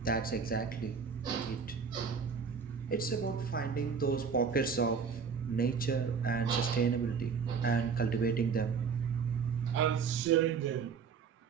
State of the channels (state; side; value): quieter; left; 5.9 dB